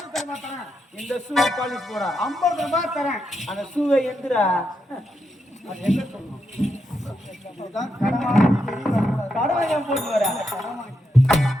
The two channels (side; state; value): both; normal; correlation 0.83